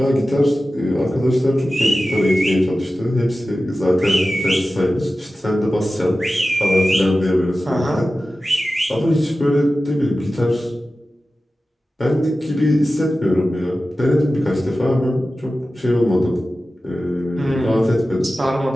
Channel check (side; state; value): both; normal; correlation 0.95